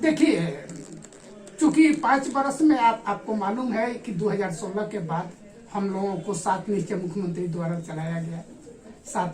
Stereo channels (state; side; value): identical; both; correlation 1.00